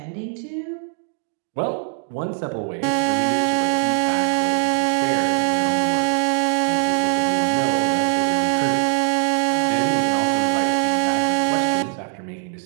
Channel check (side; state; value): left; silent; 57 dB below the other